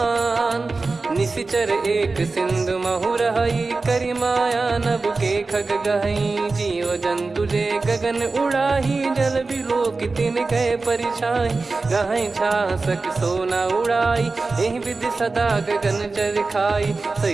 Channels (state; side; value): quieter; left; 3.8 dB